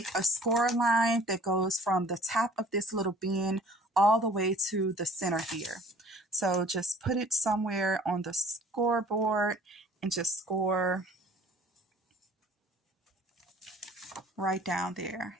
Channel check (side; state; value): both; normal; correlation 0.51